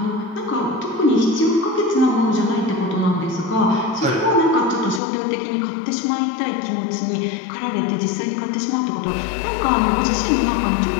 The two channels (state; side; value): drops out; right; at 5.0 s